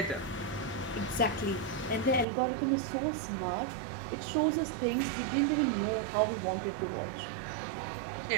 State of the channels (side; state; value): left; drops out; at 2.2 s